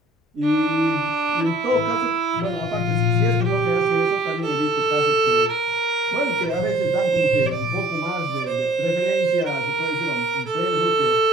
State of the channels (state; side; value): normal; both; correlation 0.55